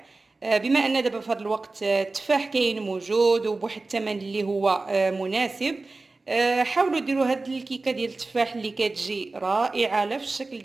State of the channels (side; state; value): left; quieter; 3.5 dB